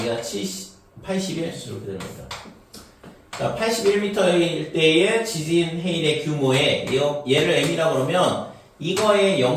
81 이렇게 되는 거죠. 자, 81m일 때의 지진 해일의 규모에 얘를 m이라고 그러면 이거의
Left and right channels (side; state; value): both; identical; correlation 1.00